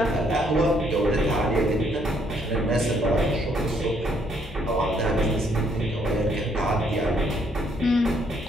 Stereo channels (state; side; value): normal; both; correlation 0.69